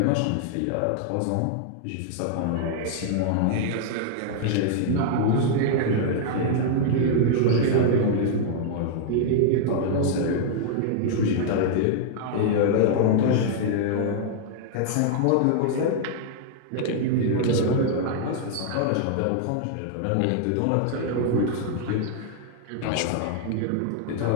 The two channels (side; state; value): both; different; correlation -0.01